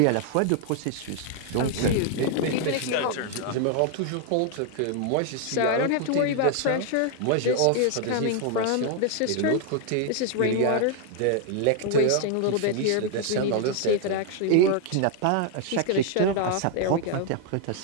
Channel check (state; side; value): different; both; correlation 0.00